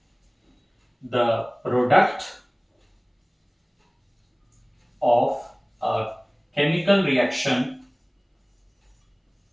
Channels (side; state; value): both; identical; correlation 1.00